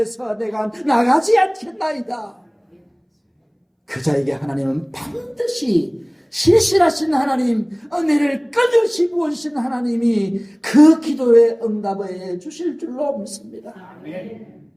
내가 나가지 않겠나이다. 그 자에게 하나님은 반드시 신실하신 하나님, 은혜를 끊임없이 부어주신 하나님이 그 기도에 응답해 주실 줄로 믿습니다.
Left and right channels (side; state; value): both; identical; correlation 1.00